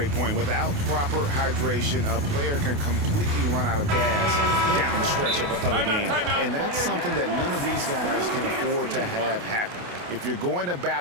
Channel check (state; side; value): late; left; 28 ms